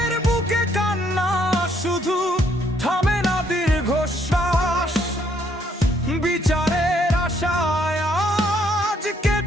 বুকে কান্না শুধু থামে না দীর্ঘশ্বাস। বিচারের আশায় আজ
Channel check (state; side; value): normal; both; correlation 0.69